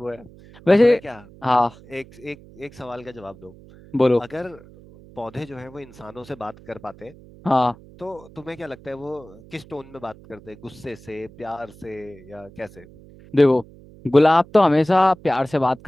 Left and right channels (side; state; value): right; noise; hum, 22 dB below the sound